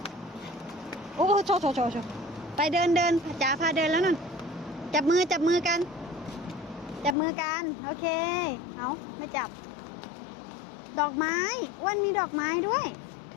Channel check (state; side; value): drops out; right; at 7.2 s